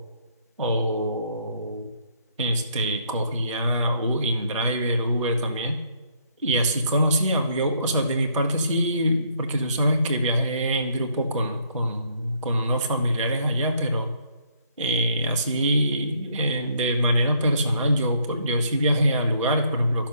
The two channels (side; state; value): both; inverted; correlation -0.67